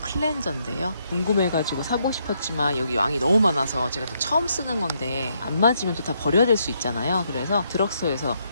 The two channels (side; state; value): both; inverted; correlation -0.76